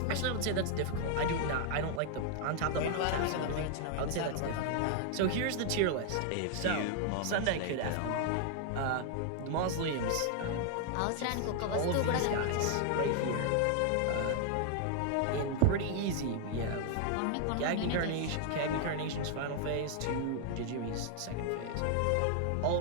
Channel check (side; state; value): both; different; correlation 0.00